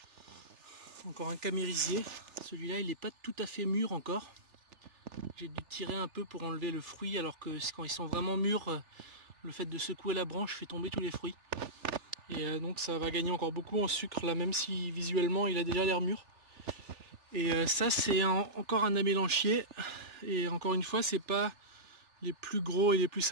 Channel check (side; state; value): left; late; 3.4 ms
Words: Encore un camérisier, celui-là il n'est pas tout à fait mûr encore. J'ai dû tirer un peu pour enlever le fruit, alors que quand ils sont vraiment mûrs, le fait de secouer la branche fait tomber tous les fruits. Et donc ça va gagner encore beaucoup en sucre là, même si visuellement il a déjà l'air mûr. Et ça c'est encore un amélanchier. Et encore une fois, c'est pas les plus gros et les plus